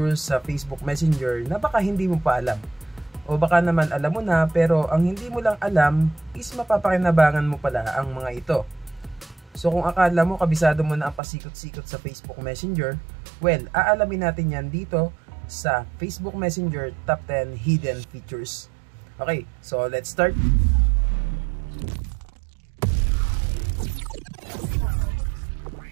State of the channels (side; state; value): left; drops out; at 11.2 s